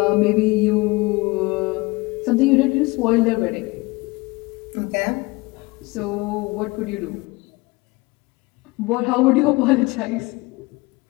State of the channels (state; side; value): quieter; right; 23.5 dB